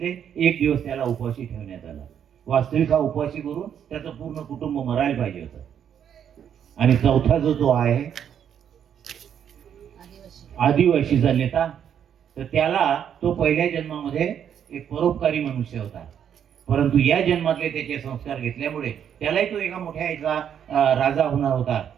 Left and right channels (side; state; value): left; quieter; 8.8 dB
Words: एक दिवस त्याला उपाशी ठेवण्यात आलं. वास्तविक हा उपाशी करून त्याचं पूर्ण कुटुंब मरायला पाहिजे होतं. आणि चौथा जो आहे आदिवासीचा नेता, तर त्याला तो पहिल्या जन्मामध्ये एक परोपकारी मनुष्य होता, परंतु या जन्मातले त्याचे संस्कार घेतल्यामुळे त्यालाही तो एका मोठ्या याचा राजा होणार होता,